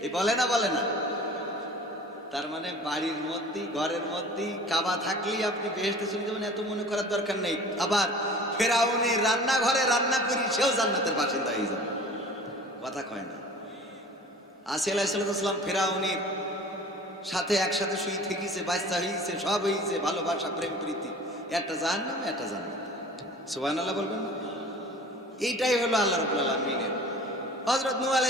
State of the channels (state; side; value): normal; both; correlation 0.43